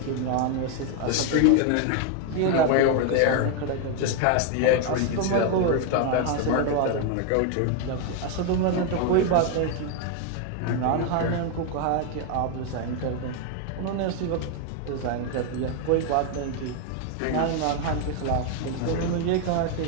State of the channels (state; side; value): different; both; correlation 0.01